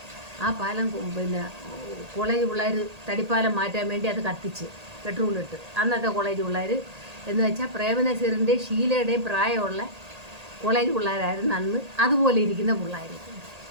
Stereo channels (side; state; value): left; late; 1.8 ms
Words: ആ പാലം പിന്നെ കോളേജ് പിള്ളേർ തടിപ്പാലം മാറ്റാൻ വേണ്ടി അത് കത്തിച്ച് പെട്രോളിട്ട്. അന്നത്തെ കോളേജ് പിള്ളേർ എന്ന് വെച്ചാൽ പ്രേമനസീറിൻ്റെയും ഷീലയുടെയും പ്രായമുള്ള കോളേജ് പിള്ളേരായിരുന്നു അന്ന്. അതുപോലെ ഇരിക്കുന്ന പിള്ളേർ,